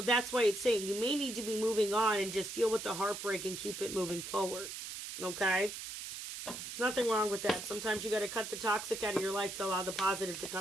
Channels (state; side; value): noise; right; hiss, 8 dB below the sound